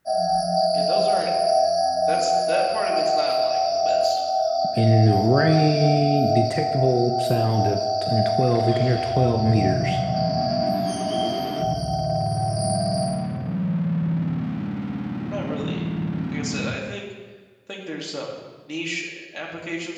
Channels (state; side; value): identical; both; correlation 1.00